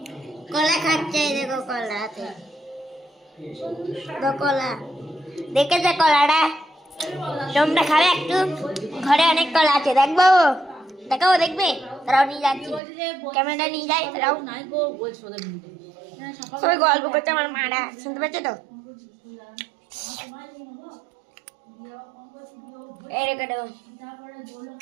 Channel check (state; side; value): drops out; left; at 12.8 s